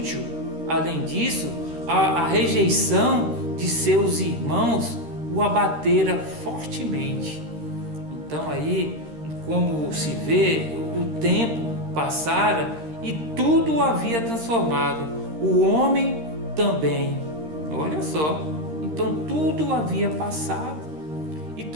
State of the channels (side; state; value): left; late; 13 ms